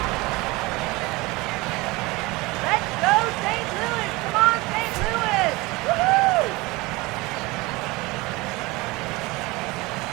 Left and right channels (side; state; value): left; quieter; 22.7 dB